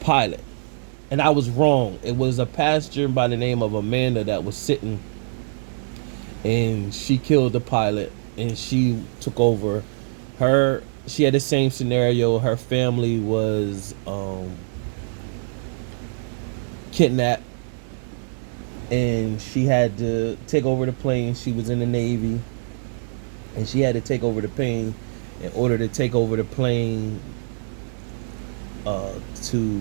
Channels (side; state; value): left; silent; 63 dB below the other